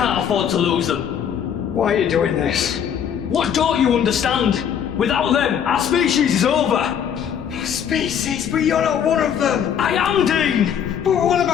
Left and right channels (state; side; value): quieter; right; 8.5 dB